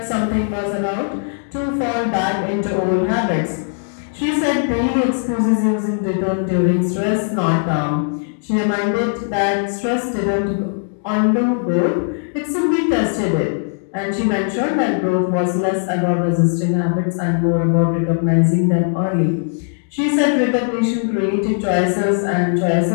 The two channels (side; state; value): right; silent; digital silence